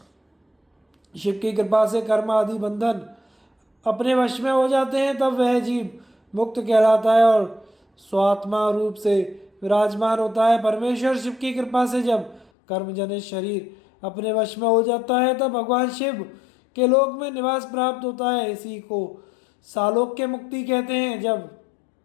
शिव की कृपा से कर्म आदि बंधन अपने वश में हो जाते हैं, तब वह जीव मुक्त कहलाता है और स्वात्मा रूप से विराजमान होता है। परमेश्वर शिव की कृपा से जब कर्मजनित शरीर अपने वश में हो जाता है तब भगवान शिव के लोक में निवास प्राप्त होता है। इसी को सालोक्य मुक्ति कहते हैं। जब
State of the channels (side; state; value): right; drops out; at 12.5 s